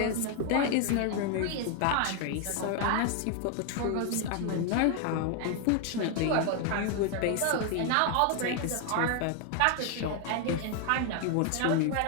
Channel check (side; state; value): both; different; correlation 0.00